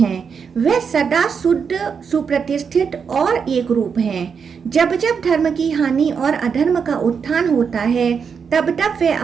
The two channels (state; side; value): quieter; left; 6.3 dB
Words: है। वह सदा शुद्ध, सुप्रतिष्ठित और एक रूप हैं। जब जब धर्म की हानि और अधर्म का उत्थान होता है तब तब वे